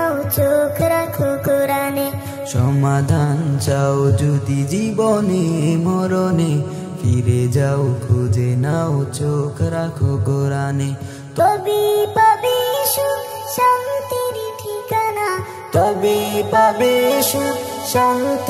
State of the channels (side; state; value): both; identical; correlation 1.00